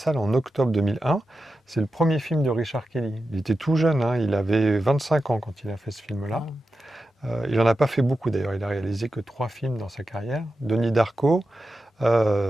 en octobre 2001. C'est le premier film de Richard Kelly. Il était tout jeune, il avait 25 ans quand il a fait ce film-là. Il n'en a pas fait beaucoup d'ailleurs, il a réalisé que 3 films dans sa carrière. Donnie Darko,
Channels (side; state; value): both; normal; correlation 0.91